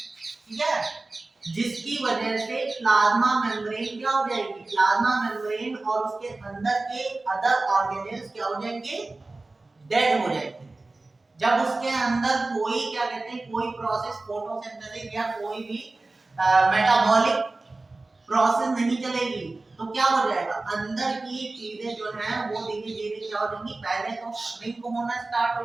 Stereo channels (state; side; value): quieter; left; 3.2 dB